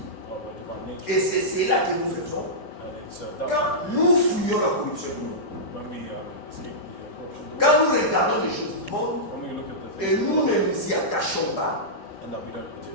nature. Et c'est cela que nous faisons And it's that quand nous fuyons la corruption du monde. when we escape the corruption, Quand nous regardons les choses du monde when we look at the et things nous ne nous y attachons pas, and that we don't put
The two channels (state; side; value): late; right; 4.8 ms